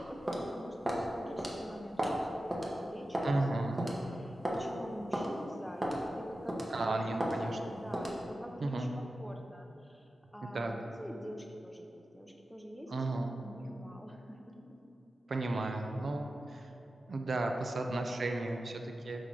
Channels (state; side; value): normal; both; correlation 0.93